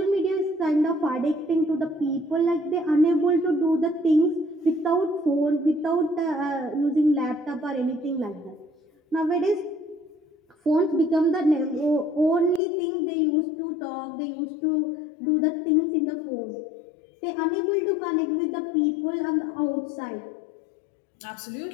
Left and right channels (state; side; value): drops out; right; at 12.6 s